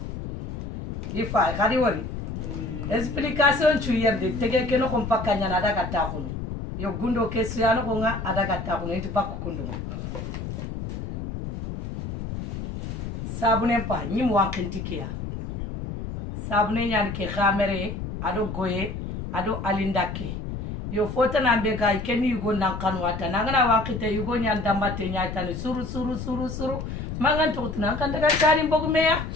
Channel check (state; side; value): noise; left; rumble, 6 dB below the sound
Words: ifa khadi wori explication tu yerde tege keno ko pakanya na daga takuno yo gundo kesu yano ko nga adaga takuno itu bakku kundo sabune pa nyim wankentikia sabune nyan ke khamere ado goye ado alindake yo fota na mbega ikeni yugo na kanwata nangana wankite yugo nyan dambate nyatani suru mangan to tuna kan daga tani bogumeya